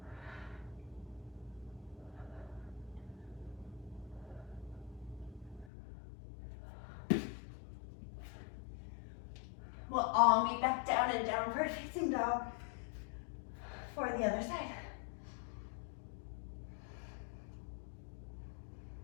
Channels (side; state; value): right; drops out; at 5.7 s